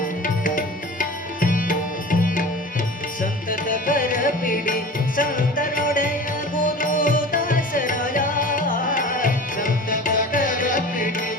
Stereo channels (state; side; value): normal; both; correlation 0.37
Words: ಸಂತತ ಕರ ಪಿಡಿ ಸಂತನೊಡೆಯ ಗುರು ದಾಸರಾಯ ಸಂತತ ಕರ ಪಿಡಿ